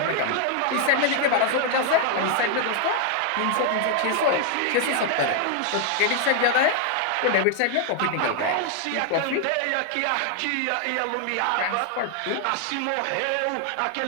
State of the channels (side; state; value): both; different; correlation 0.00